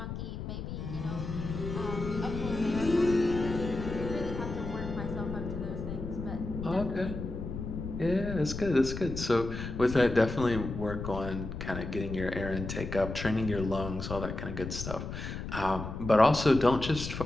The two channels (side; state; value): left; noise; rumble, 6 dB below the sound